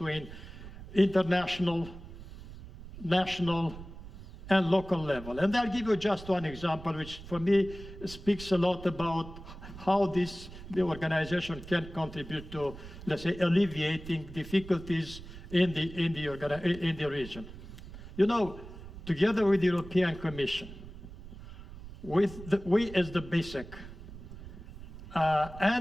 international, national, and local level. And I'll give you just one example, which for me speaks a lot about how the organization can contribute to, let's say, alleviating difficulties in the region. Together with the European Commission, we as the BISEC,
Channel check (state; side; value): noise; right; rumble, 14 dB below the sound